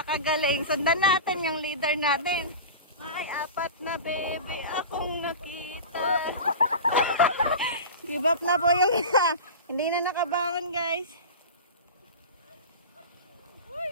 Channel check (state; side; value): inverted; both; correlation -0.30